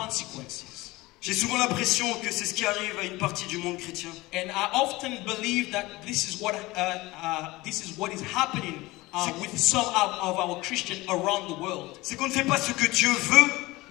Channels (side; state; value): right; quieter; 20.6 dB